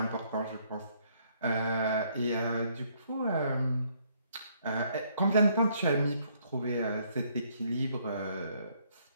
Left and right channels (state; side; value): inverted; both; correlation -0.68